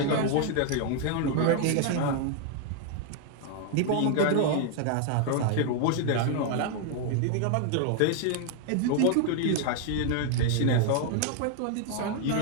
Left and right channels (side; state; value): both; different; correlation 0.00